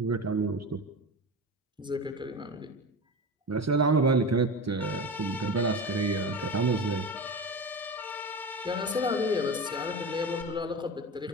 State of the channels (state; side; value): normal; both; correlation 0.27